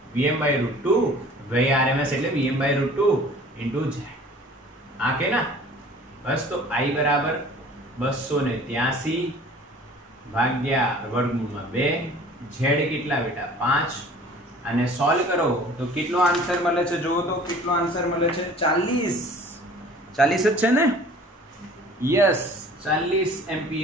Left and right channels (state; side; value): normal; both; correlation 0.48